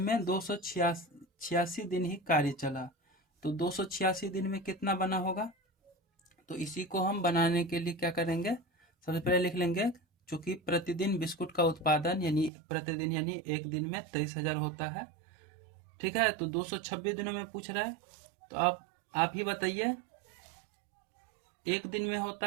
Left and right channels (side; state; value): left; drops out; at 12.5 s